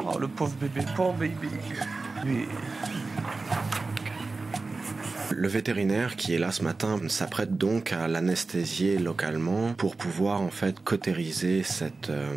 Oh, le pauvre bébé. Lui. Le vétérinaire qui est là ce matin s'apprête donc à l'anesthésier localement pour pouvoir en fait cautériser cette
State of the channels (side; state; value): left; quieter; 3.7 dB